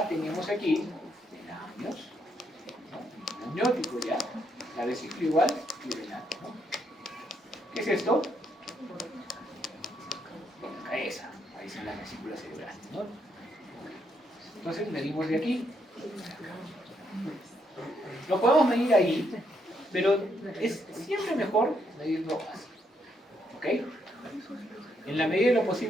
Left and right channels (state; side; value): normal; both; correlation 0.76